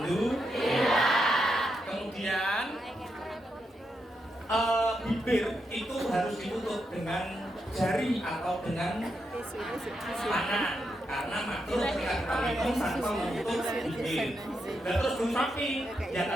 Kemudian bibir itu harus ditutup dengan jari atau dengan tangan. Karena makhluk ketika kita minum tanpa menutup bibir. Dan terus belum rapi, ya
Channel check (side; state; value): both; normal; correlation 0.83